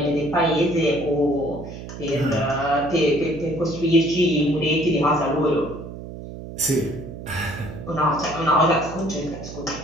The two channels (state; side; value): noise; right; hum, 11 dB below the sound